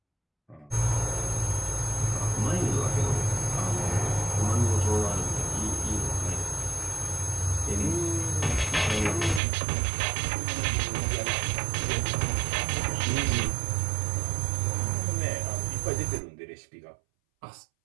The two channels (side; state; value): left; drops out; at 9.4 s